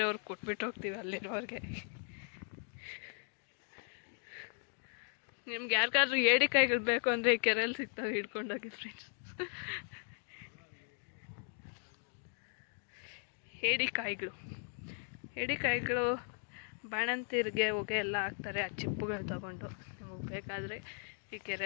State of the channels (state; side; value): silent; right; 53 dB below the other